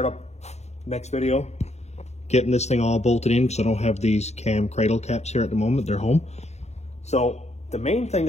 up next video getting this thing all bolted in because I don't have these cam cradle caps here at the moment. They're home. So the main thing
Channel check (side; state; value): right; late; 0.32 ms